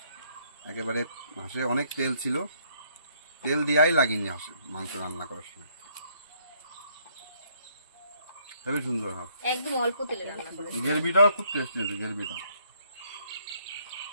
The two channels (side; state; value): both; inverted; correlation -0.68